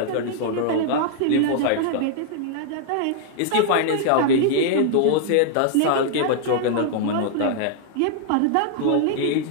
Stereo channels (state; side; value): different; both; correlation -0.01